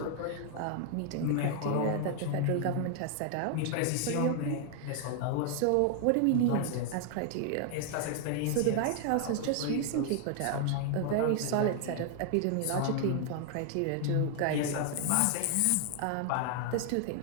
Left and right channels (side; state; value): both; different; correlation 0.00